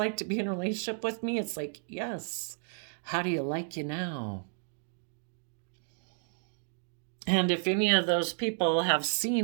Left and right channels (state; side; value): silent; left; 56 dB below the other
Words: to be in a relationship with me? It's like, yes. How do you like you now? And if any of those people have